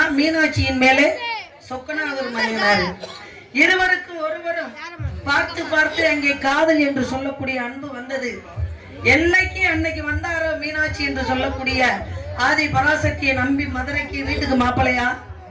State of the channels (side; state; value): both; identical; correlation 1.00